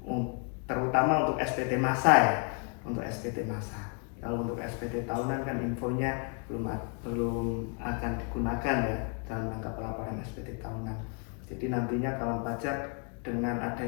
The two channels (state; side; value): quieter; right; 39.0 dB